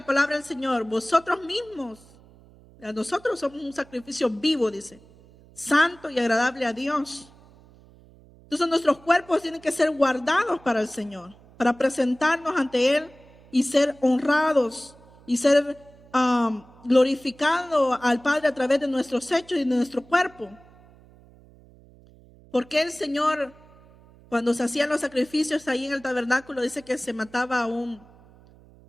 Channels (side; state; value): right; noise; hum, 25 dB below the sound